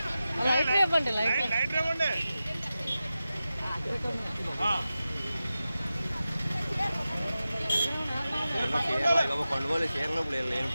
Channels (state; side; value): inverted; both; correlation -0.94